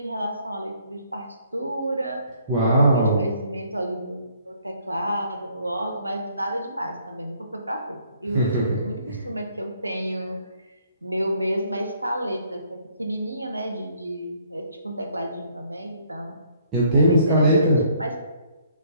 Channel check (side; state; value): both; inverted; correlation -0.65